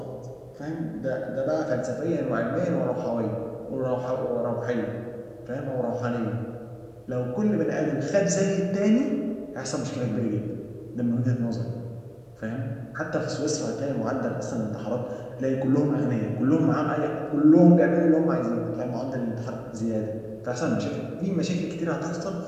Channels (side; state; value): both; identical; correlation 1.00